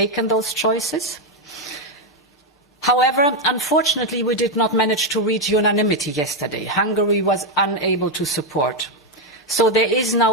those choices. However, unfortunately, we did not manage to reach unanimity yesterday. Hungary was unable to support. So there is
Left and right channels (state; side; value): normal; both; correlation 0.04